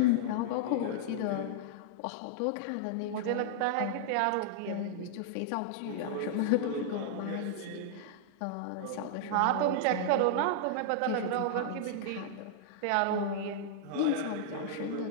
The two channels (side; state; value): both; different; correlation -0.01